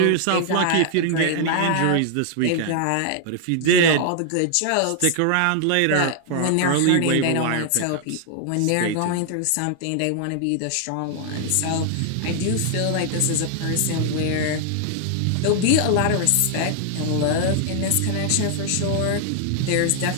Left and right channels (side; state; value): both; different; correlation 0.00